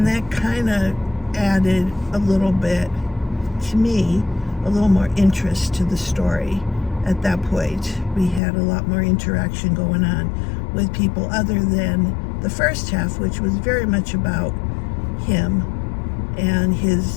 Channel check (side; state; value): right; drops out; at 8.4 s